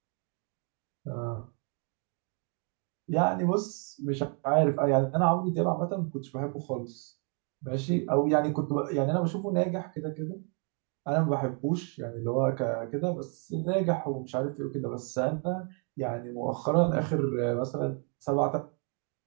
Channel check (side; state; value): left; quieter; 39.5 dB